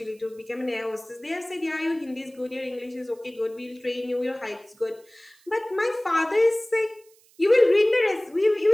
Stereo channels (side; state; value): right; noise; hiss, 30 dB below the sound